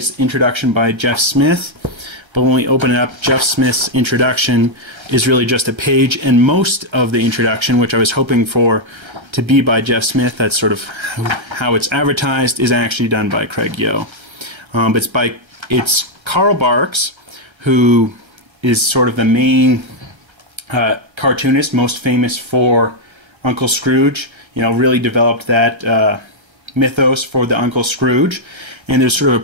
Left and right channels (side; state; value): left; late; 1.3 ms